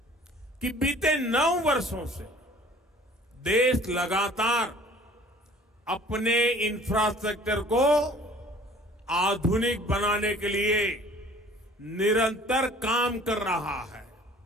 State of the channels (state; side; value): normal; both; correlation 0.51